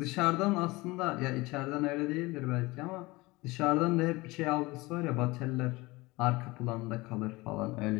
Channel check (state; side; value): quieter; right; 22.1 dB